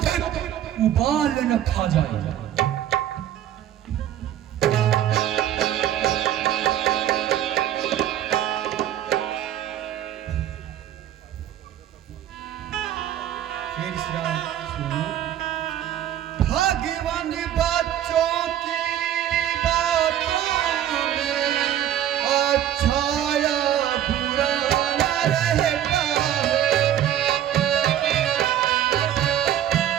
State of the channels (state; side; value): quieter; left; 11.3 dB